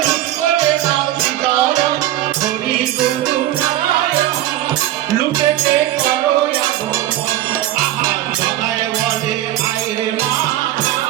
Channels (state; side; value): quieter; left; 13.7 dB